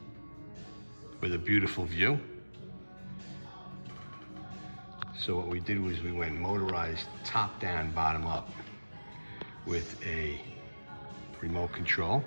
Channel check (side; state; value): both; inverted; correlation -1.00